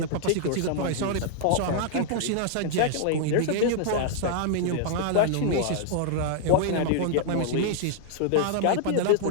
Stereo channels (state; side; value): different; both; correlation -0.01